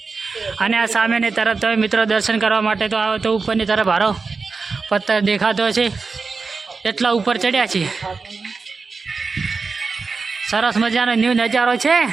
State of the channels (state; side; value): quieter; left; 4.5 dB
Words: અને આ સામેની તરફ તમે મિત્રો દર્શન કરવા માટે તો આવો તો ઉપરની તરફ હારો પથ્થર દેખાતો છે. એટલા ઉપર ચડ્યા છીએ. સરસ મજાનો ન્યૂ નજારો છે.